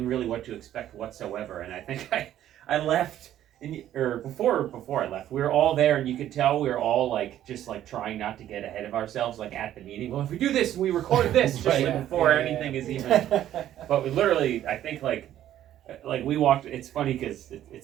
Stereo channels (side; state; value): left; quieter; 12.0 dB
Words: really what to expect whatsoever. And I think I left. Before I left, we were all there, and you could tell we were all like just like trying not to get ahead of ourselves, like at the meeting. Well, if we do this, and we record this, just Right. like before anything is even. But we literally, I think like we walked. It's funny because it